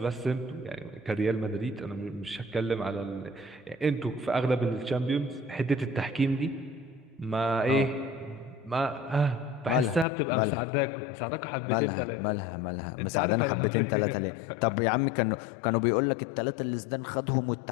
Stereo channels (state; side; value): drops out; right; at 10.1 s